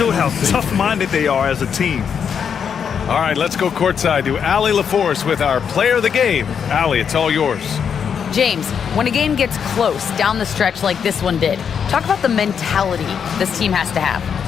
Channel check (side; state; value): right; quieter; 7.2 dB